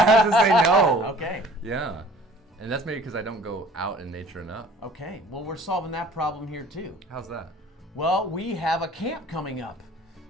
to say no. Okay. Yeah. And that's maybe because I don't go out in nature enough. Okay. Well, we're solving that problem here too. How's that? Well, we have a camp coming up.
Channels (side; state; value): both; normal; correlation 0.50